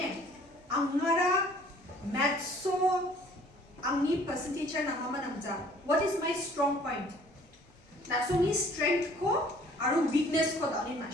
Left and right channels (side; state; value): both; normal; correlation 0.55